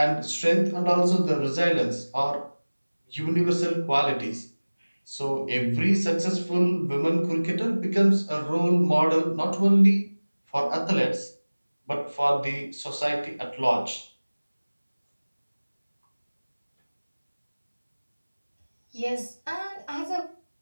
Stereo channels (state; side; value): inverted; both; correlation -1.00